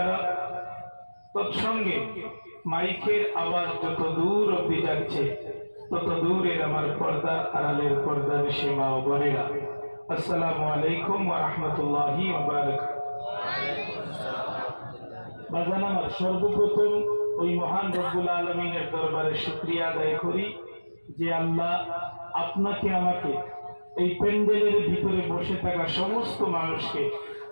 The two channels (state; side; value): inverted; both; correlation -1.00